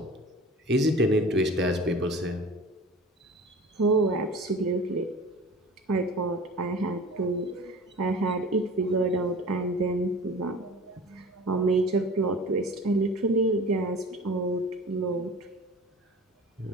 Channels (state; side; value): normal; both; correlation 0.39